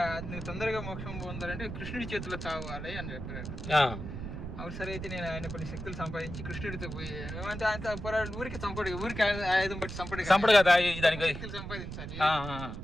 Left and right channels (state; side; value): noise; right; rumble, 7 dB below the sound